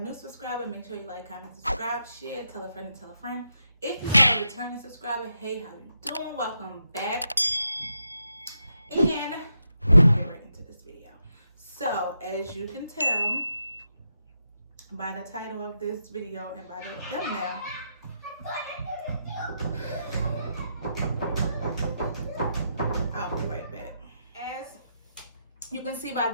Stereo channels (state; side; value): inverted; both; correlation -0.83